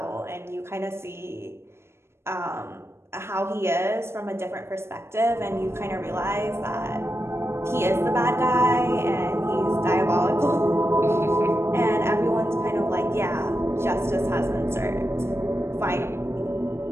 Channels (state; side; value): late; left; 0.12 ms